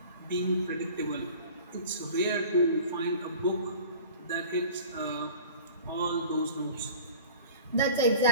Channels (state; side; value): inverted; both; correlation -0.42